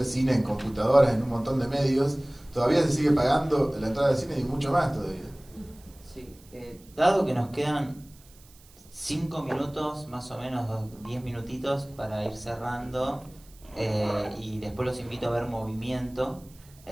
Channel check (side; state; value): right; noise; hiss, 26 dB below the sound